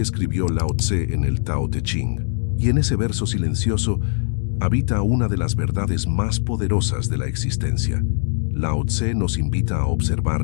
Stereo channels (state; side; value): silent; right; digital silence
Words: escribió Lao Tse en el Tao Te Ching, y en ese verso silencioso habita una de las verdades más poderosas de la existencia. Lao Tse nos invita a